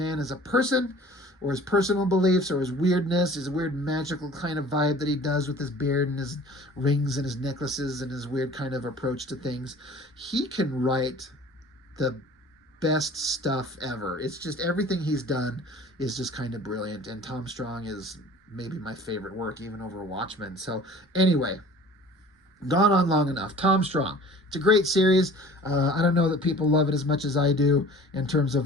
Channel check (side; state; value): both; normal; correlation 0.46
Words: as a person, or his personal beliefs, or his weirdness, his weird magical kind of vibe that he does with his beard and his rings and his necklaces and his weird kind of approach to things, he can write the best stuff ever. It's just everything he's done is just kind of brilliant, and Tom Strong is maybe my favorite work, even over Watchmen. So anyway, gone on long enough. Tom Strong, it's a great series. I don't know that people love it as much as I do in terms